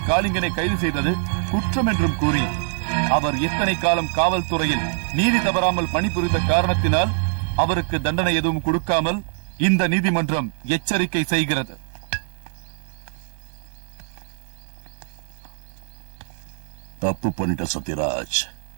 காளிங்கனை கைது செய்தது குற்றம் என்றும் கூறி அவர் எத்தனை காலம் காவல்துறையில் நீதி தவறாமல் பணிபுரிந்த காரணத்தினால் அவருக்கு தண்டனை எதுவும் கொடுக்காமல் இந்த நீதிமன்றம் எச்சரிக்கை செய்கிறது. தப்பு பண்ணிட்ட சத்யராஜ்,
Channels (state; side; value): silent; left; digital silence